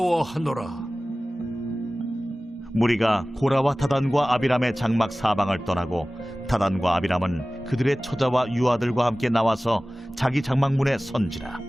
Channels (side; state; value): both; normal; correlation 0.97